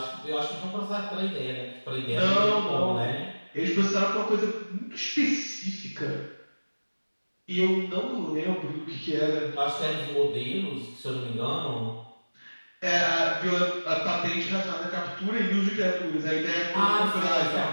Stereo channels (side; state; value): both; inverted; correlation -1.00